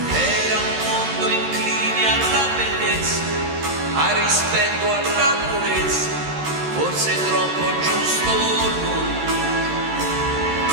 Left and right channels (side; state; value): left; late; 13 ms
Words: Era un mondo incline alla bellezza, al rispetto, alla purezza, forse troppo giusto lui.